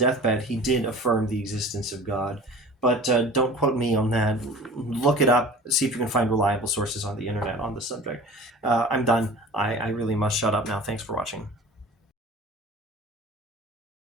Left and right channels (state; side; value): normal; both; correlation 0.41